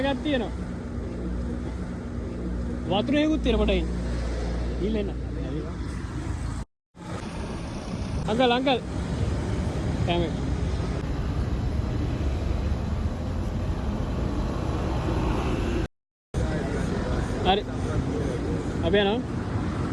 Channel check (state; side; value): identical; both; correlation 1.00